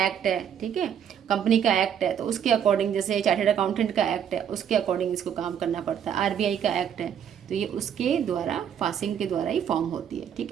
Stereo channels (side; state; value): left; quieter; 8.7 dB